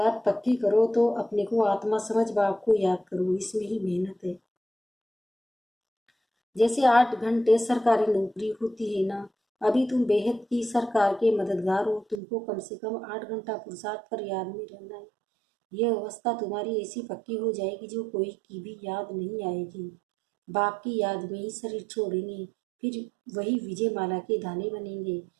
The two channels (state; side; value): drops out; left; at 12.2 s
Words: पक्की करो, तो अपने को आत्मा समझ बाप को याद करो, इसमें ही मेहनत है। जैसे 8 घंटे सरकारी नौकरी होती है ना, अभी तुम बेहद की सरकार के मददगार हो, तुमको कम से कम 8 घंटा पुरुषार्थ कर याद में रहना है। यह अवस्था तुम्हारी ऐसी पक्की हो जाएगी जो कोई की भी याद नहीं आएगी। बाप की याद में ही शरीर छोड़ेंगे, फिर वही विजय माला के दाने बनेंगे।